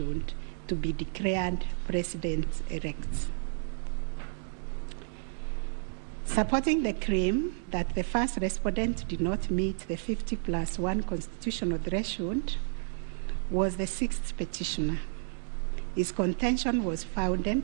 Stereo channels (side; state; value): left; silent; 57 dB below the other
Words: to be declared president-elect. Supporting the claim that the first respondent did not meet the 50+1 constitutional threshold was the sixth petitioner. His contention was